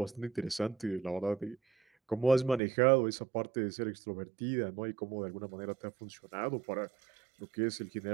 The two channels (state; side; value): drops out; left; at 2.6 s